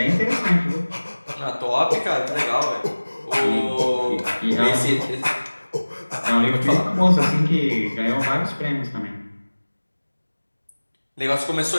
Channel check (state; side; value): inverted; both; correlation -1.00